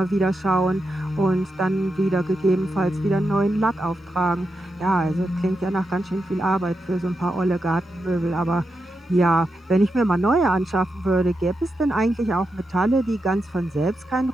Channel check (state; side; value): normal; both; correlation 0.87